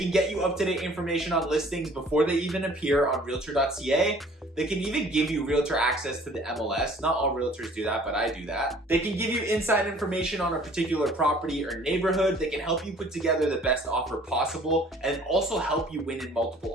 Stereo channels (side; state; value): both; normal; correlation 0.53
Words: get you up-to-date information on listings before they even appear on realtor.ca. They can even give you realtor access to the MLS. Not all realtors do that, but I do that. They can give you inside information on a particular property or neighborhood. They can help you put together the best offer possible and also help you win in multiple